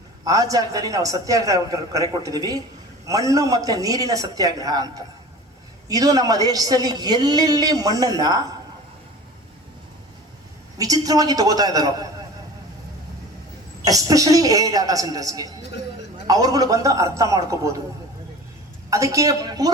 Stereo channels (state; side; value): normal; both; correlation 0.38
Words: ಆ ಜಾಗದಲ್ಲಿ ನಾವು ಸತ್ಯಾಗ್ರಹ ಕರೆ ಕೊಟ್ಟಿದ್ದೀವಿ, ಮಣ್ಣು ಮತ್ತೆ ನೀರಿನ ಸತ್ಯಾಗ್ರಹ ಅಂತ. ಇದು ನಮ್ಮ ದೇಶದಲ್ಲಿ ಎಲ್ಲೆಲ್ಲಿ ಮಣ್ಣನ್ನ ವಿಚಿತ್ರವಾಗಿ ತಗೋತಾ ಇದ್ದಾರೋ, ಎಸ್ಪೆಷಲಿ ಡಾಟಾ ಸೆಂಟರ್ಸ್ಗೆ, ಅವ್ರುಗಳು ಬಂದು ಅರ್ಥ ಮಾಡ್ಕೋಬಹುದು. ಅದಕ್ಕೆ